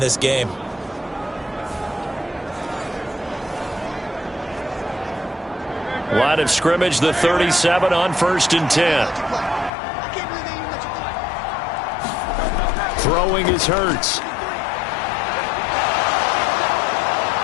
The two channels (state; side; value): drops out; right; at 9.7 s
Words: game. Line of scrimmage, the 37 on 1st and 10. Throwing is Hurts.